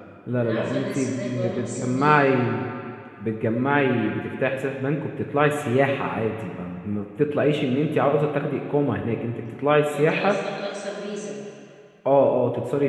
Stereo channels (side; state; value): both; identical; correlation 1.00